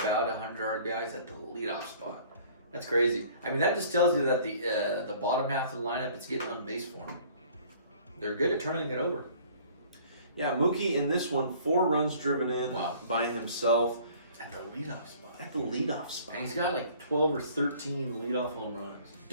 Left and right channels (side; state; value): both; inverted; correlation -0.53